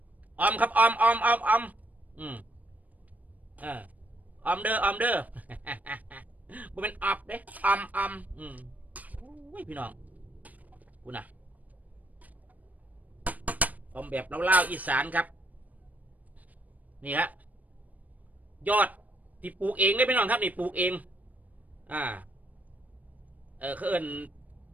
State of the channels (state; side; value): late; left; 0.076 ms